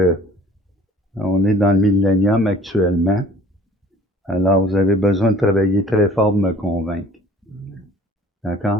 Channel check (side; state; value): both; normal; correlation 0.51